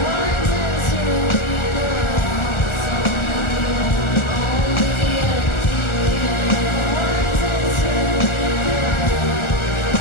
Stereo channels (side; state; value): right; late; 1.4 ms